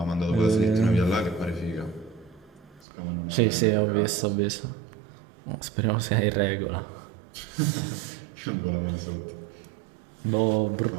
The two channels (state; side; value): drops out; left; at 2.9 s